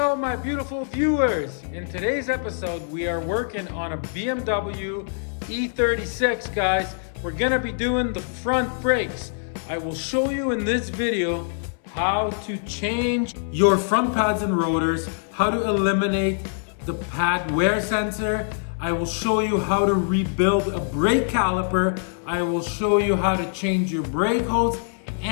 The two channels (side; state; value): right; silent; 62 dB below the other